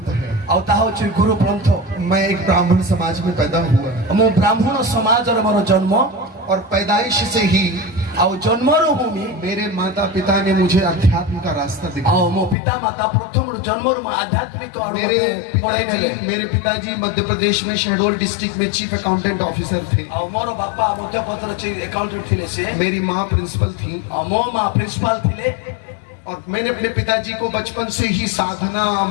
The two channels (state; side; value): drops out; right; at 12.6 s